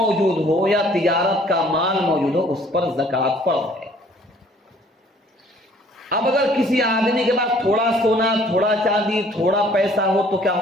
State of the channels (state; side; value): normal; both; correlation 0.58